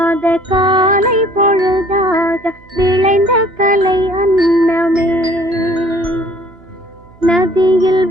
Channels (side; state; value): right; noise; hum, 27 dB below the sound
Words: காலை பொழுதாக விளைந்த கலை அன்னமே நதியில்